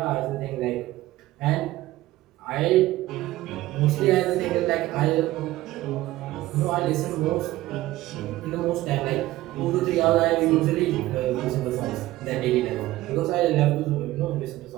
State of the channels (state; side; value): quieter; left; 16.6 dB